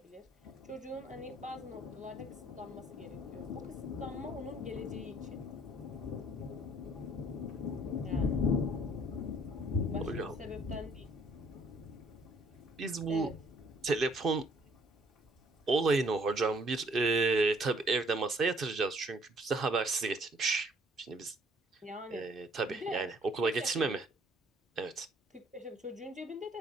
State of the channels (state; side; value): normal; both; correlation 0.61